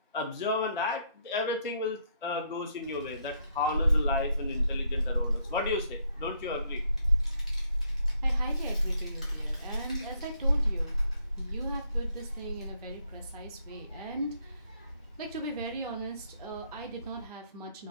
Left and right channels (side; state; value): both; inverted; correlation -0.71